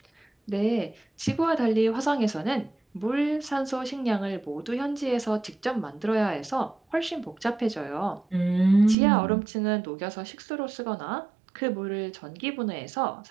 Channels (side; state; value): left; drops out; at 9.0 s